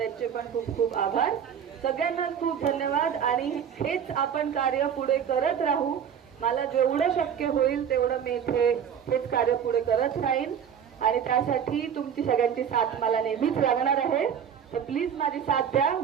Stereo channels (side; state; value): left; quieter; 8.2 dB